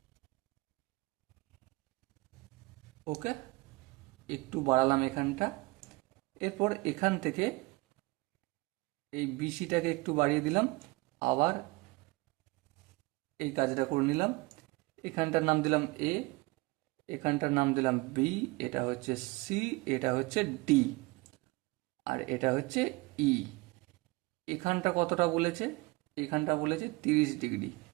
ওকে, একটু বাড়ালাম এখানটা। এরপর এখান থেকে এই বিসিটাকে একটু বাড়িয়ে দিলাম, আবার এই কাজটা করে নিলাম। এখানটার নাম দিলাম এ, এখানটার নাম দিলাম বি, এটা হচ্ছে সি, এটা হচ্ছে ডি, আর এটা হচ্ছে ই। এখানটা কতটা বলেছে? এখানটা বলেছে 30 ডিগ্রি।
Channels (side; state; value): left; quieter; 23.7 dB